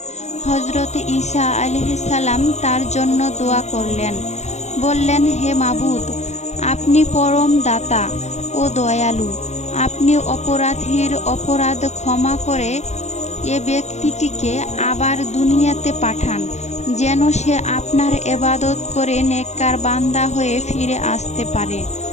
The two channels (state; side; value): late; right; 0.33 ms